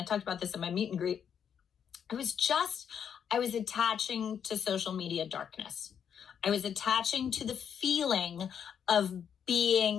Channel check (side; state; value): right; quieter; 8.0 dB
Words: talked about this in my meet and greet. I was attaching to social media darkness. I was attaching to the feeling of